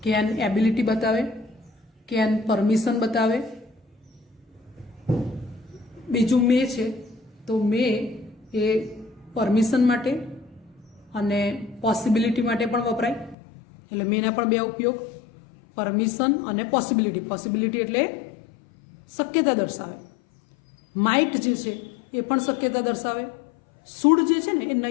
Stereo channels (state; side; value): drops out; right; at 13.4 s